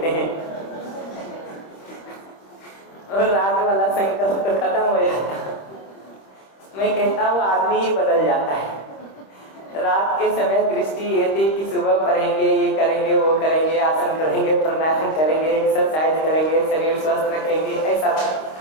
हैं, और रात वाला संकल्प तो खत्म हो जाता है। मैं कहता हूँ आदमी ही बदल जाता है। रात के समय दृष्टि ये थी कि सुबह पढ़ेंगे, ये करेंगे, वो करेंगे, आसन करेंगे, प्राणायाम करेंगे, एक्सरसाइज करेंगे, शरीर स्वस्थ रखेंगे, ऐसा।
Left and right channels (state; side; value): late; right; 26 ms